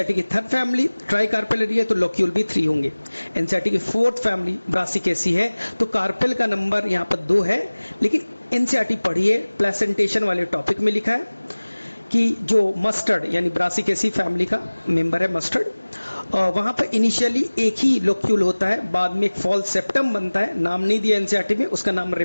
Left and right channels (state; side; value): inverted; both; correlation -1.00